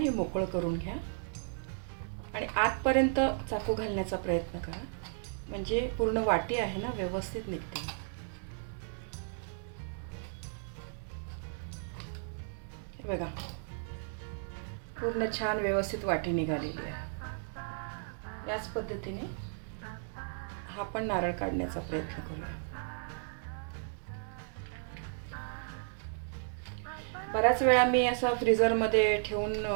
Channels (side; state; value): left; silent; 55 dB below the other